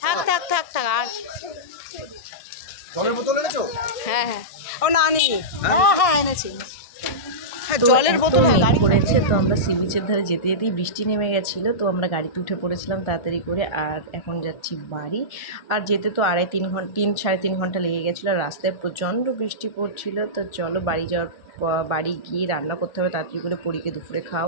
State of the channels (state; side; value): late; right; 1.4 ms